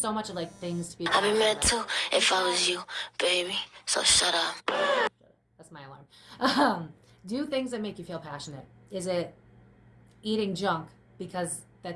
much of, like, things to be. I'd be mad too if I was you, baby, so shut up. That's my alarm. Do things that make you feel passionate. Is it eating junk because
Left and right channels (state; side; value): identical; both; correlation 1.00